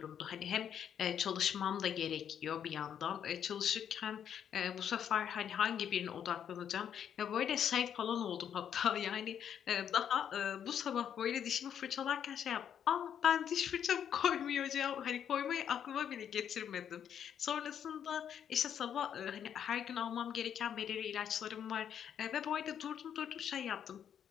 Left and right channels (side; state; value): right; quieter; 8.9 dB